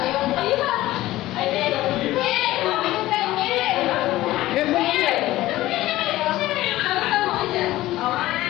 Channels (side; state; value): right; quieter; 16.3 dB